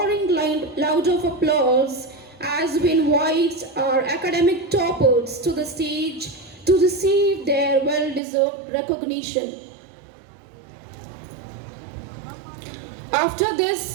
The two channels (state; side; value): drops out; left; at 8.2 s